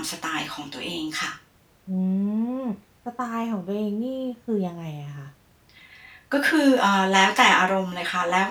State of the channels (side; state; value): both; identical; correlation 1.00